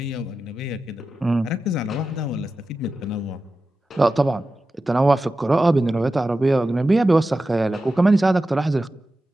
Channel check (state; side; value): normal; both; correlation 0.93